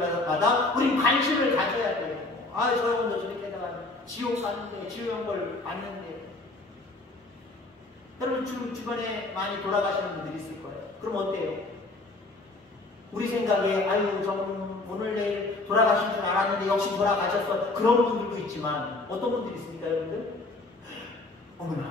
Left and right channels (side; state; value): right; quieter; 3.2 dB